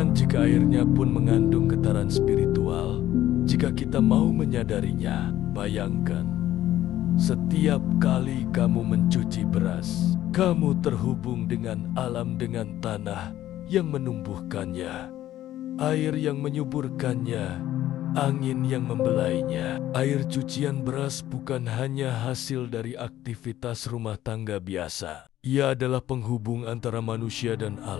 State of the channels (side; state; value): right; quieter; 13.4 dB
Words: jika airnya pun mengandung getaran spiritual jika kita mau menyadarinya. Bayangkan, setiap kali kamu mencuci beras, kamu terhubung dengan alam, dengan tanah yang menumbuhkannya, air yang menyuburkannya, angin yang membelainya. Air cucian beras bukan hanya hasil dari aktivitas rumah tangga biasa. Ia adalah penghubung antara manusia dan